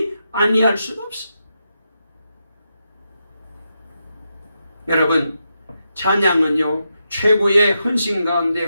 아니할 수가 없어. 여러분, 찬양은요 최고의 헌신 가운데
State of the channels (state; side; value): inverted; both; correlation -0.85